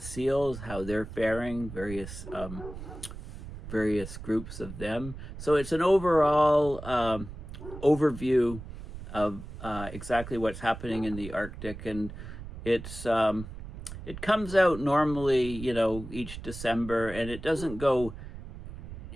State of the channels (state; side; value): noise; right; rumble, 11 dB below the sound